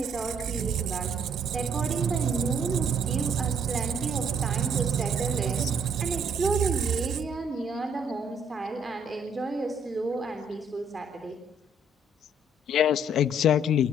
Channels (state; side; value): normal; both; correlation 0.64